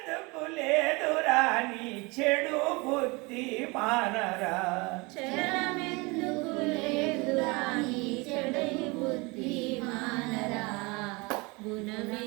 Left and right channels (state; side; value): quieter; left; 26.7 dB